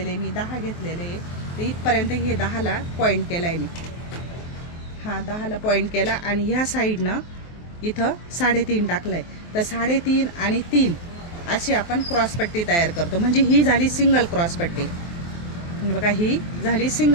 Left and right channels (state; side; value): late; right; 23 ms